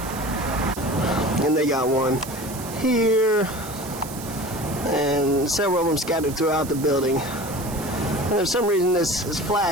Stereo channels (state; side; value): noise; right; hiss, 13 dB below the sound